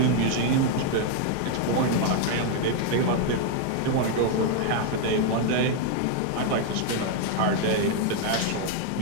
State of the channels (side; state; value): both; different; correlation 0.00